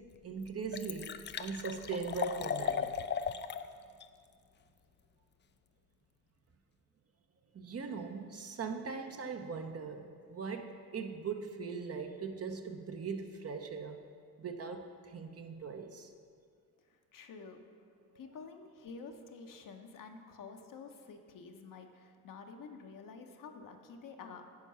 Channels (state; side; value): normal; both; correlation 0.00